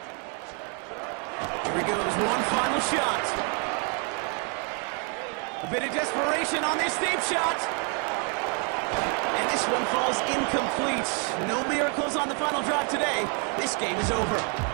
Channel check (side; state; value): left; quieter; 37.8 dB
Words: Here he goes, one final shot. A bit of desperation on this deep shot. And this one falls incomplete. No miracles on the final drive today. This game is over.